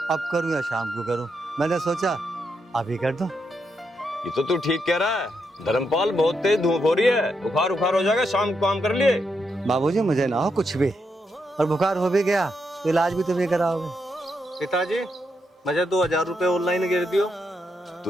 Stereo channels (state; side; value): normal; both; correlation 0.81